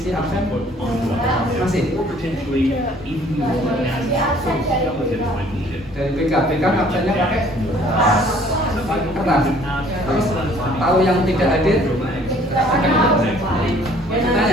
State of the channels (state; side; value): normal; both; correlation 0.57